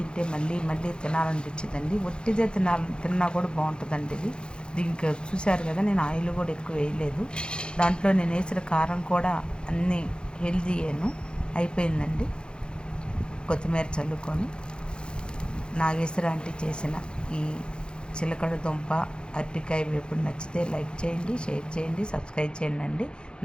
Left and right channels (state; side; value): late; right; 0.051 ms